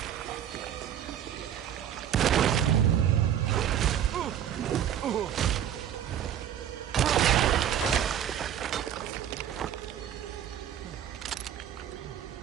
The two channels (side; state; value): left; quieter; 10.0 dB